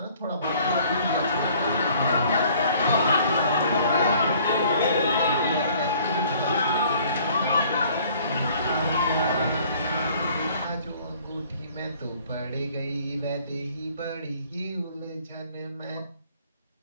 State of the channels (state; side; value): inverted; both; correlation -0.56